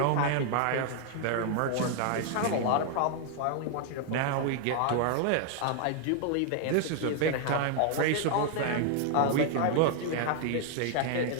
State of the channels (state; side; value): different; both; correlation 0.00